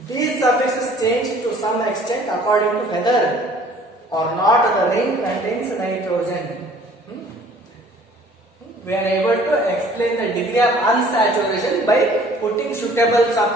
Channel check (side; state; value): both; normal; correlation 0.53